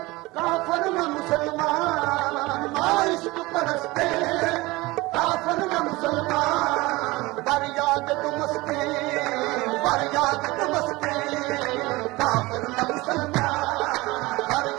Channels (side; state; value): left; quieter; 21.4 dB